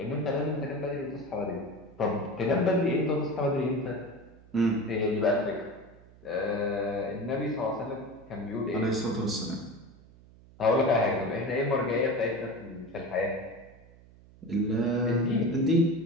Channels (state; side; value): noise; right; hum, 24 dB below the sound